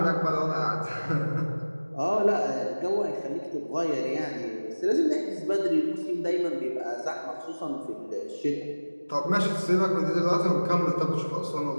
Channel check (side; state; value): both; inverted; correlation -1.00